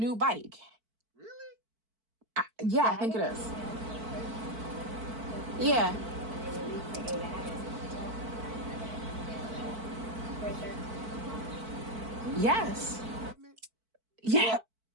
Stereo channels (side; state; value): left; late; 4.5 ms